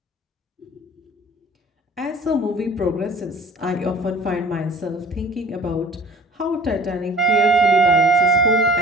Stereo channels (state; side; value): normal; both; correlation 0.47